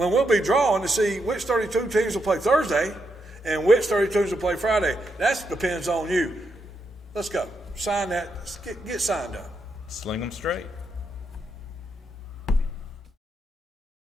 we'll be drawing to see which 32 teams will play Thursday and which 32 teams will play Friday. That depends on you. Let's go. Sign that. Get signed up. Sling them straight.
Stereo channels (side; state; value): both; normal; correlation 0.81